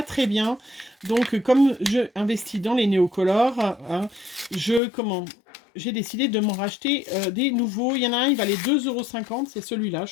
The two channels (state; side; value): drops out; right; at 4.8 s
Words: très bien. Donc, comme je investis dans les néocolores, hein, j'ai décidé de m'en racheter des nouveaux. Il y en a un, il valait 2,50 €, c'est celui-là,